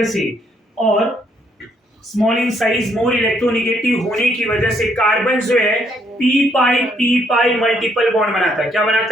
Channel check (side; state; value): both; normal; correlation 0.70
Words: से और small in size more electronegative होने की वजह से कार्बन जो है पी पाई मल्टीपल बॉन्ड बनाता है. क्या